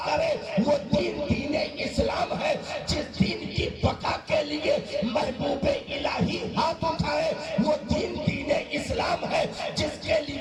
کرے وہ دین دین اسلام ہے، جس دین کی بقا کے لیے محبوب الہی ہاتھ اٹھائے وہ دین دین اسلام ہے، جس کے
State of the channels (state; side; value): identical; both; correlation 1.00